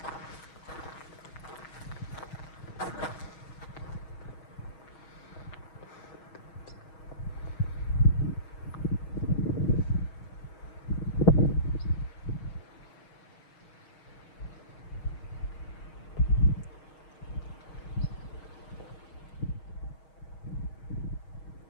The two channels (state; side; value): late; right; 6.3 ms